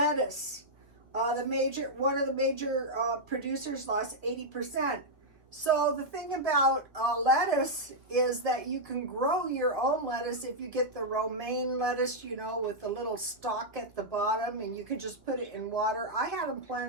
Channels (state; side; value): late; left; 1.9 ms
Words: one of the major producers lost 80%. So the thing about lettuce is that you can grow your own lettuce if you get the romaine lettuce, you know, with the little stalk at the bottom, and you can just put it in water. I had them